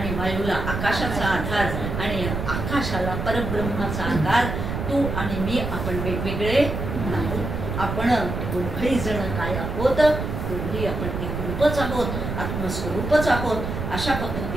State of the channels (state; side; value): noise; right; rumble, 4 dB below the sound